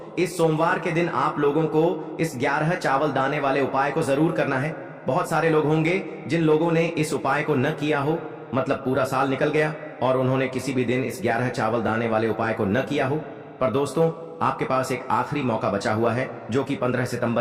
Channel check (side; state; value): both; identical; correlation 1.00